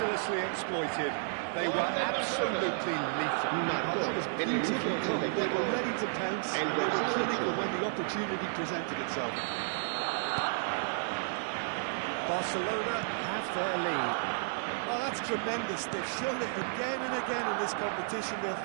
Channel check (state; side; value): silent; left; digital silence